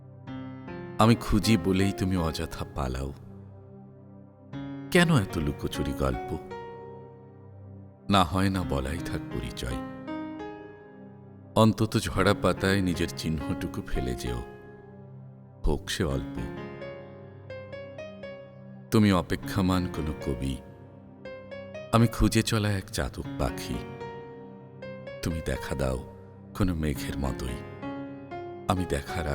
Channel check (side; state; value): both; identical; correlation 1.00